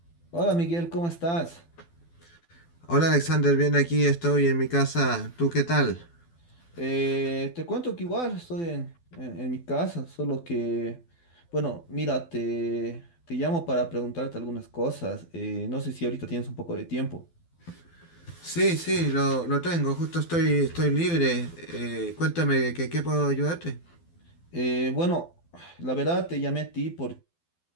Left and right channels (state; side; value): late; right; 12 ms